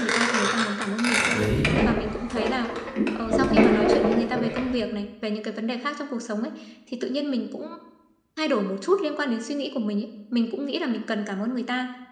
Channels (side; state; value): both; identical; correlation 1.00